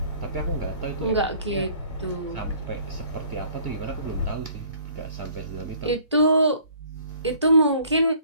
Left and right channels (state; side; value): inverted; both; correlation -0.56